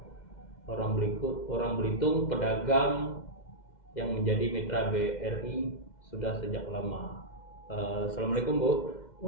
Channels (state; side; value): late; right; 2.1 ms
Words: orang Belitung, pedagang yang menjadi mitra BRI sudah sejak lama. Assalamualaikum, Bu.